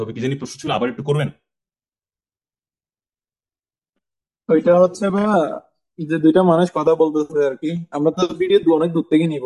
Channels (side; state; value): both; identical; correlation 1.00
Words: হবে, কি জানি প্রশ্ন ছিল, আবার একটু করবেন। ওইটা হচ্ছে ভাইয়া, যে দুইটা মানুষ কথা বলতেছে আর কি, আমরা তো ভিডিও অনেক দূর থেকে নিব,